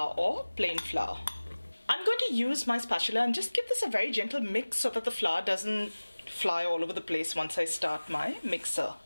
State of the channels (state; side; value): inverted; both; correlation -1.00